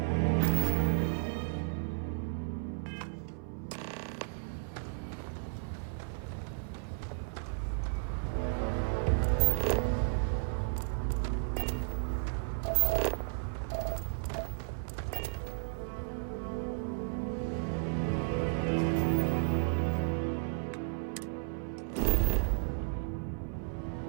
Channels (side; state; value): left; silent; 55 dB below the other